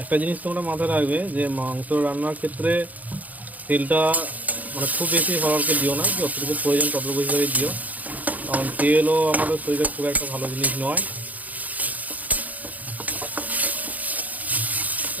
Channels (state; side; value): late; left; 0.078 ms